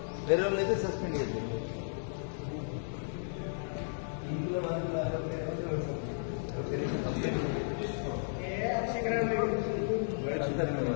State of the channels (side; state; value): right; silent; digital silence